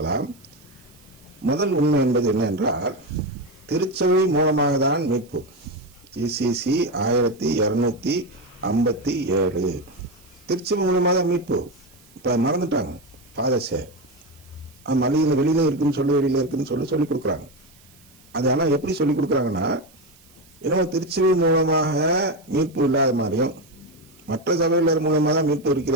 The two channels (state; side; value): noise; right; hiss, 28 dB below the sound